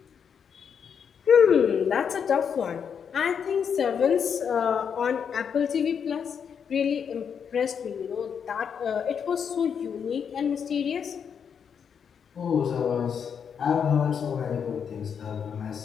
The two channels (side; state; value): right; quieter; 7.2 dB